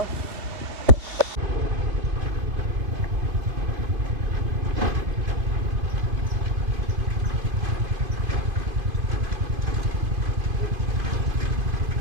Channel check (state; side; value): late; left; 2.5 ms